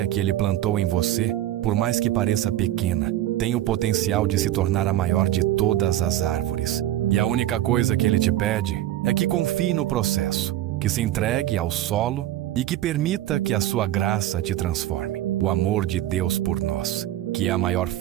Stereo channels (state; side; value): quieter; left; 13.6 dB